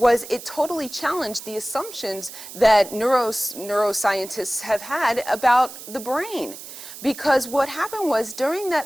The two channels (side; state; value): right; noise; hiss, 13 dB below the sound